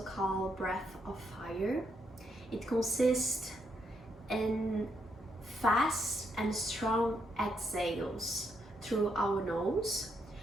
breath of fire. It consists in fast and strong exhales through our nose,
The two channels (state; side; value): normal; both; correlation 0.77